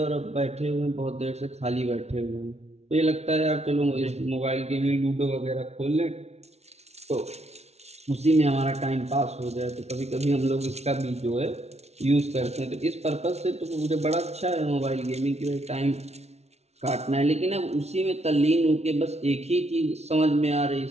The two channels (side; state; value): left; late; 0.31 ms